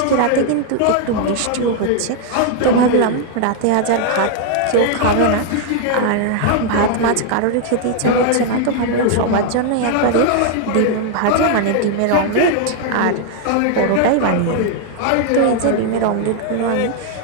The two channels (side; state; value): both; different; correlation 0.00